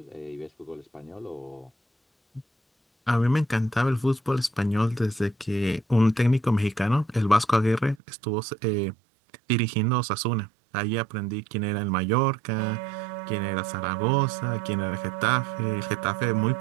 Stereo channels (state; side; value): drops out; left; at 8.0 s